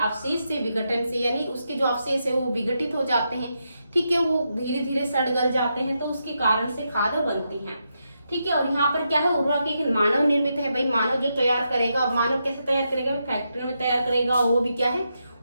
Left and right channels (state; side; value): inverted; both; correlation -0.84